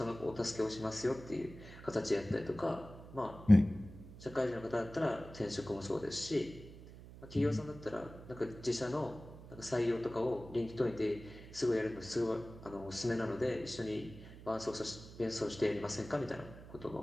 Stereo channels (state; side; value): noise; right; hum, 16 dB below the sound